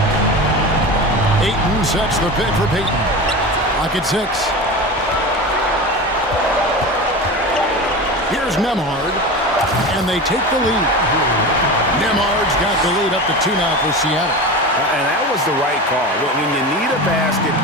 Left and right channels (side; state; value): both; normal; correlation 0.28